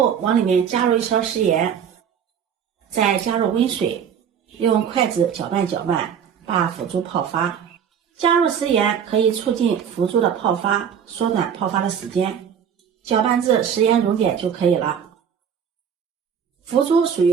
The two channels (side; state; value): left; quieter; 7.9 dB